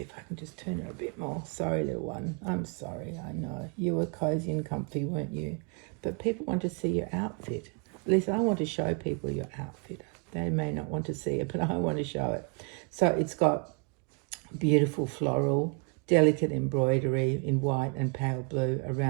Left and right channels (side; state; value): left; quieter; 35.1 dB